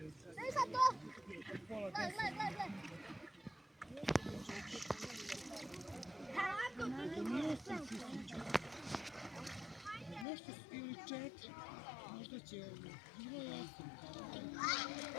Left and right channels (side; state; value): right; drops out; at 10.2 s